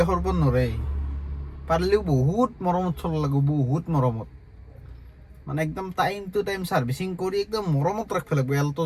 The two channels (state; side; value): identical; both; correlation 1.00